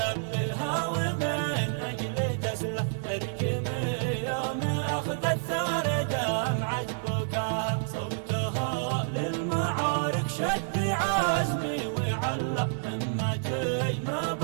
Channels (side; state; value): left; silent; 59 dB below the other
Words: ومن اجل تسلح ترجمي يوم اخذت ثار دمعة بكاها. صوتها للمعارك شد عزمي وعلق همتي ما